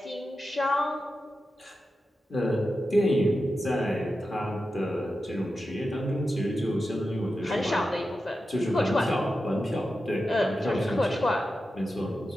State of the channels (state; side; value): normal; both; correlation 0.91